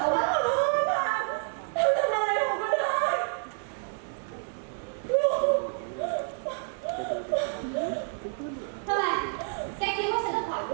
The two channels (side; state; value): left; silent; 59 dB below the other